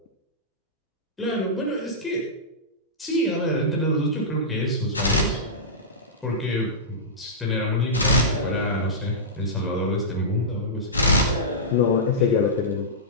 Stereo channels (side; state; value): both; normal; correlation -0.15